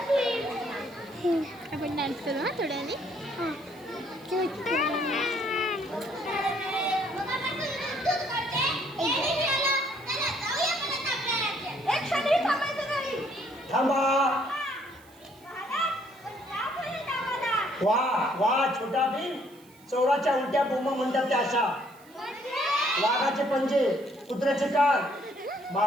आपण डान्स करू ना थोड्याने. थांबा. वा वा छोटा भीम. चोराच्या उलट्या बोंबा म्हणतात त्या अशा. वाघाचे पंजे, कुत्र्याचे कान,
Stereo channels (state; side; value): noise; right; hiss, 27 dB below the sound